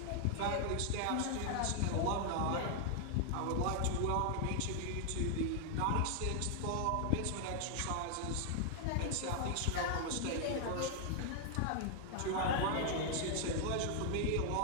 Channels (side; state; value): both; different; correlation 0.00